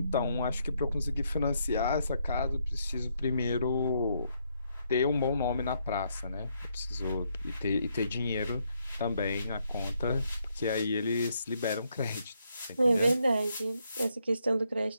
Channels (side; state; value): both; inverted; correlation -0.75